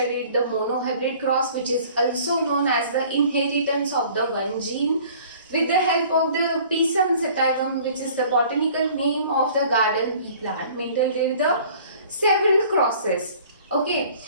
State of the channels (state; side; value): inverted; both; correlation -0.51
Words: the monohybrid cross, which is also known as the inheritance of the one gene with the help of the Pisum sativum, which is the botanical name of the garden pea plant. Mendel did the several crosses. Okay,